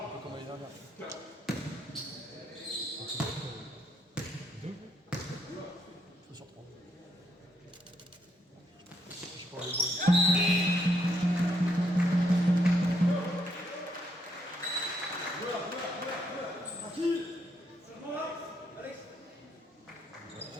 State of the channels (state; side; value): normal; both; correlation 0.75